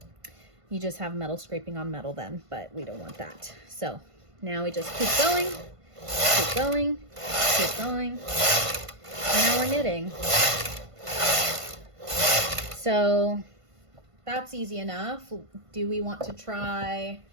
just have metal scraping on metal then, but we don't want that. So now we just keep going, keep going, keep going. And now we're knitting. So that's easy enough. Do we want to try,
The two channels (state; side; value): late; left; 1.5 ms